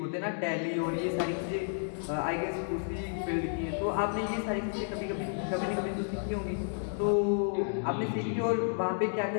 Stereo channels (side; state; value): right; silent; digital silence